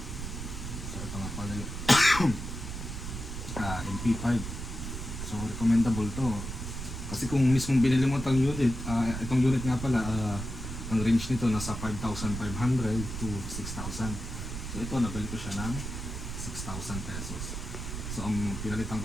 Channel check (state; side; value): noise; right; rumble, 6 dB below the sound